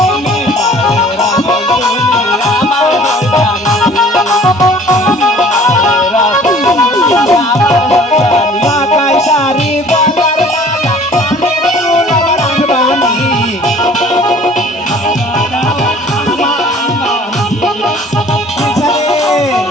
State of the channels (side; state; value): both; normal; correlation 0.51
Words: মাথায় শাড়ি গলার মালা কানের দুল আমার আনবানি